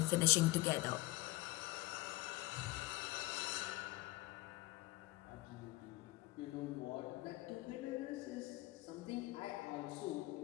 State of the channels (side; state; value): right; quieter; 20.0 dB